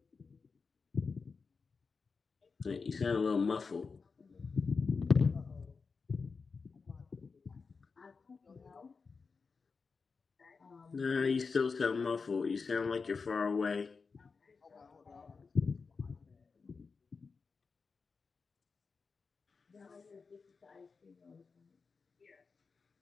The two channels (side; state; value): right; quieter; 4.8 dB